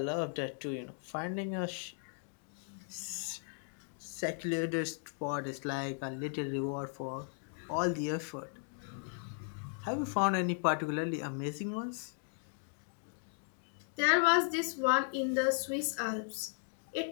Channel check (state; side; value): silent; right; 53 dB below the other